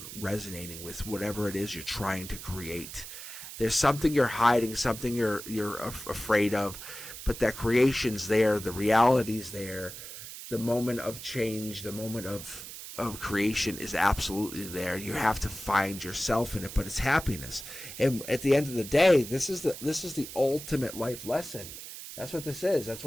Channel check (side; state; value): right; noise; hiss, 11 dB below the sound